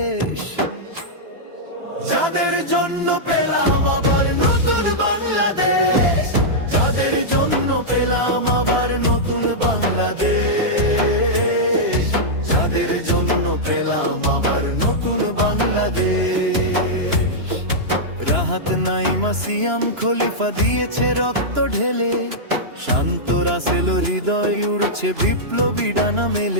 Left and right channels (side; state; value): left; late; 2.9 ms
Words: যাদের জন্য পেলাম আবার নতুন বাংলাদেশ, যাদের জন্য পেলাম আবার নতুন বাংলাদেশ, যাদের জন্য পেলাম আবার নতুন বাংলাদেশ। রাহাত নাইমা সিয়াম খলিফা দিয়েছে রক্ত ঢেলে, শান্ত রাসেল হৃদয় উড়ছে বিপ্লবী ডানা